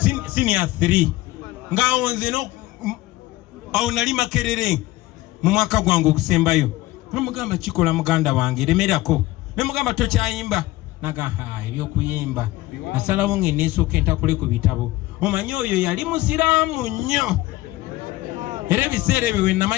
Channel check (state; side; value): quieter; right; 17.9 dB